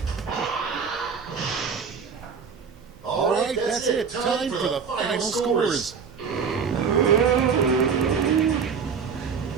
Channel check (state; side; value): quieter; left; 6.1 dB